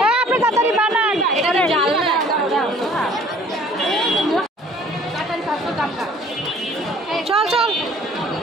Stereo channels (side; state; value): both; normal; correlation 0.54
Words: আপনি তাড়াতাড়ি বানান এটা জাল না চল চল